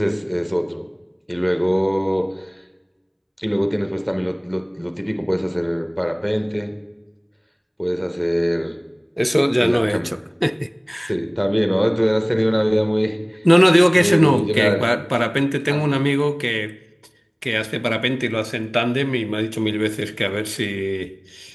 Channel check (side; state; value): both; identical; correlation 1.00